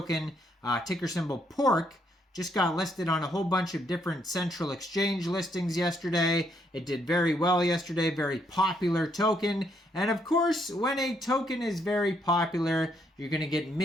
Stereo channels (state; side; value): normal; both; correlation 0.73